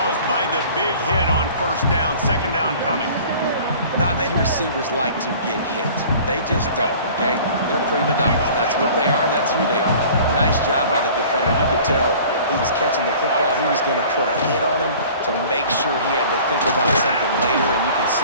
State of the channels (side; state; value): both; inverted; correlation -0.46